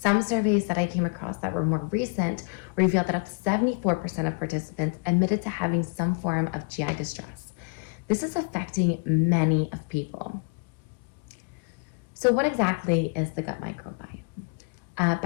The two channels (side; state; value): right; quieter; 33.0 dB